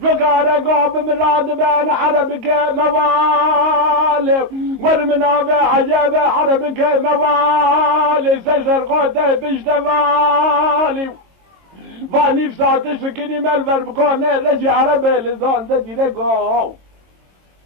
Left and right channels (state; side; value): late; left; 22 ms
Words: فقار قاب مراد بين حربك موالي ورمنا بعجاب حربك موالي سجر قوته بجتمالي فاني بساعتش فكني مالفر بكوني رجي عربي لزان دي لقو